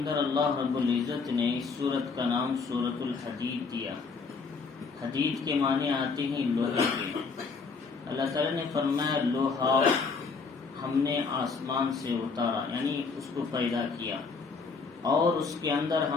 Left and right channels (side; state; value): right; quieter; 4.7 dB